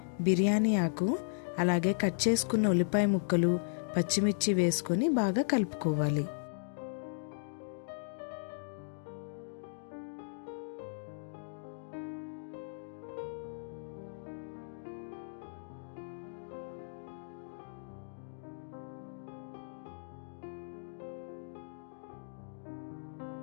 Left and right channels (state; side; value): silent; right; digital silence